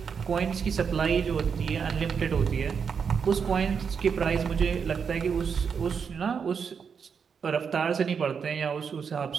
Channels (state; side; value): quieter; left; 6.4 dB